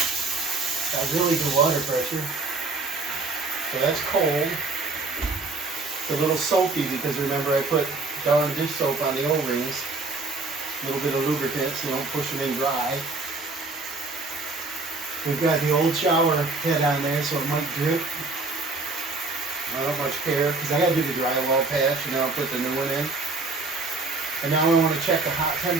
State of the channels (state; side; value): quieter; left; 3.5 dB